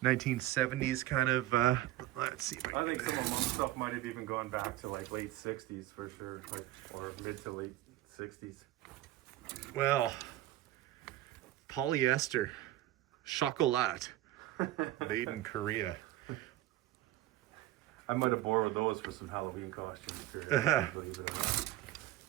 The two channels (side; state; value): left; quieter; 15.0 dB